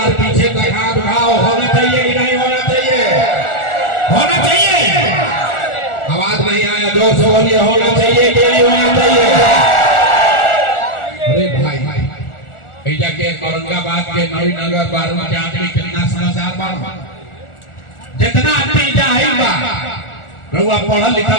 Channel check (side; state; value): right; late; 1.4 ms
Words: पीछे तक हाथ उठाओ। होना चाहिए कि नहीं होना चाहिए? होना चाहिए। आवाज नहीं आया, जोर से बोलिए। होना चाहिए कि नहीं होना चाहिए? अरे भाई ऐजा के औरंगाबाद के नवीनगर बारूद के आदमी कितना समझदार बा, जितना आदमी जाए बा रउआ पढ़ल